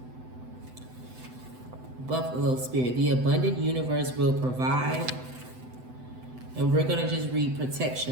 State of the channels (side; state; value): left; late; 7.9 ms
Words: Buffalo Spirit, the abundant universe will provide. And we're going to just read